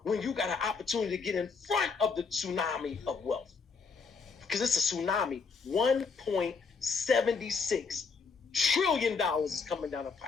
When you got an opportunity to get in front of the tsunami of wealth. Because it's a tsunami. $1.76 trillion is coming down the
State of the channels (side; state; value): right; quieter; 4.9 dB